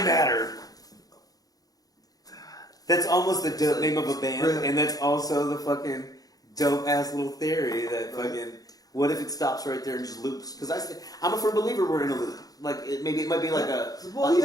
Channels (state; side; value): late; right; 0.18 ms